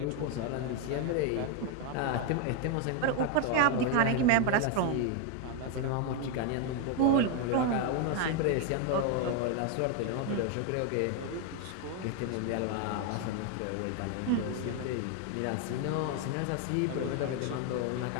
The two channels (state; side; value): different; both; correlation 0.01